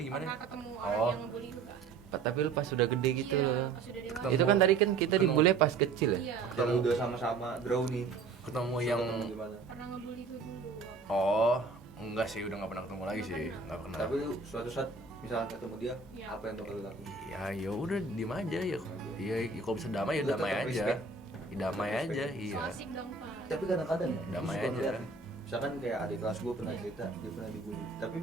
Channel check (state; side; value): quieter; left; 4.5 dB